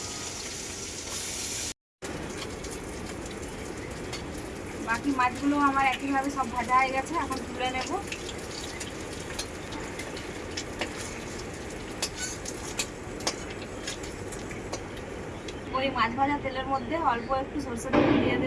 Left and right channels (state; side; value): identical; both; correlation 1.00